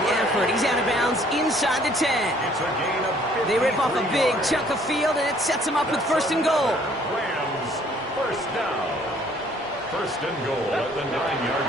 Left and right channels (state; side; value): normal; both; correlation 0.60